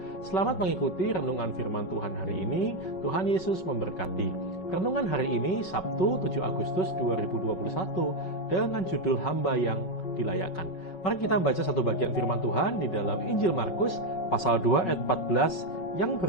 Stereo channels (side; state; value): right; late; 5.3 ms